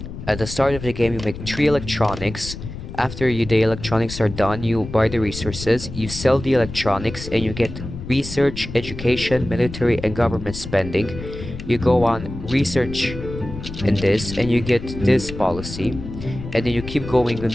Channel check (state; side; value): noise; left; rumble, 10 dB below the sound